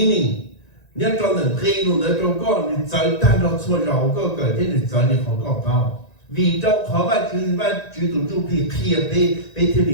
Nếu cho nên khi luôn nữa cho con thì tới ta đó xua rau có cỡ thế thì tới thì họ có bao vì trong khó và chú tụi chú thì kia bê thế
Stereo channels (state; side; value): late; right; 1.9 ms